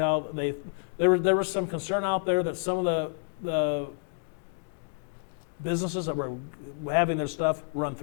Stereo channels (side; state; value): right; silent; digital silence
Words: there was some concern out there that some of the businesses that were having their stuff run